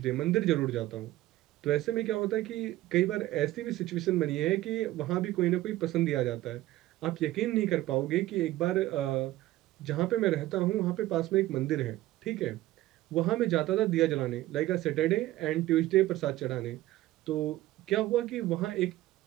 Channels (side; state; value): left; quieter; 16.0 dB